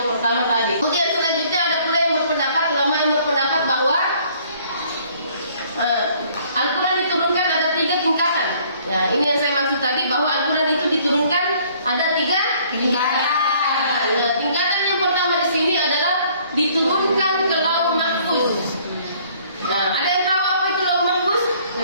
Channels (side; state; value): both; inverted; correlation -0.59